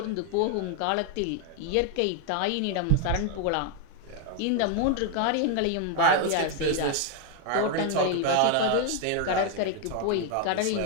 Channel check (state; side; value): different; both; correlation 0.01